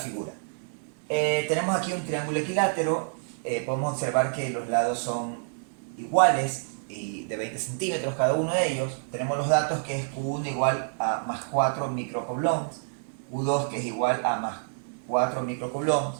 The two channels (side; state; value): left; silent; digital silence